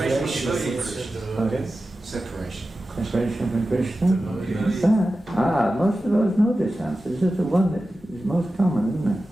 Separation. Separation from Krishna? That? Most of those know this answer. This is the one that is most common, isn't it?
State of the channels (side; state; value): both; normal; correlation 0.93